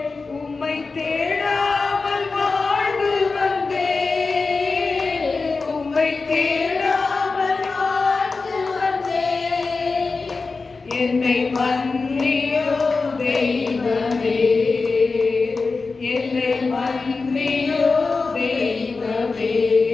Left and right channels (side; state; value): right; quieter; 4.1 dB